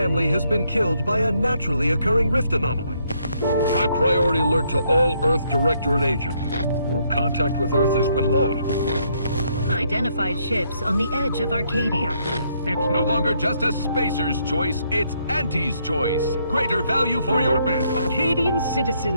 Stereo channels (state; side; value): inverted; both; correlation -0.72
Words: has been killed by a naturally occurring rift anomaly. High priority alert to all Earth Directorate agents. Contact with Earth has been low. Identified ships on the edge of Arcadia. It's no longer just a spacer's choice, it's Auntie's choice. Greater value for your men. Arcadian